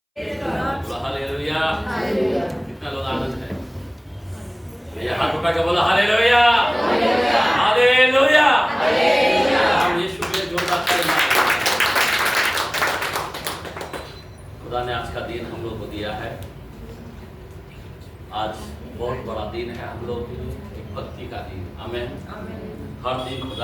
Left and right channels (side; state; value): both; identical; correlation 1.00